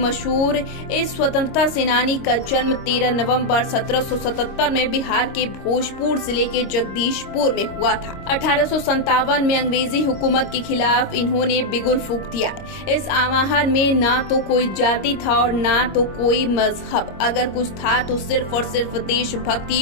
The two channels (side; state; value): right; late; 26 ms